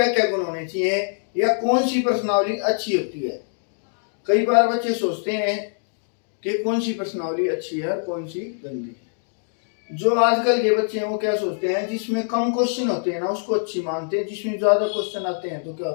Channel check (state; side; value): silent; right; digital silence